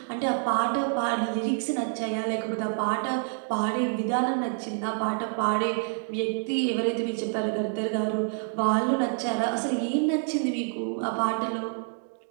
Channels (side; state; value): left; silent; 60 dB below the other